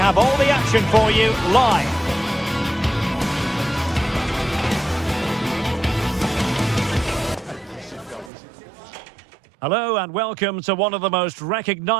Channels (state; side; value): drops out; left; at 8.3 s